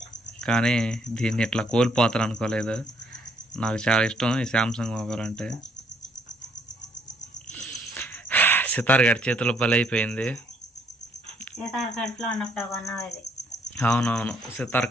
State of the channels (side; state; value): both; normal; correlation 0.67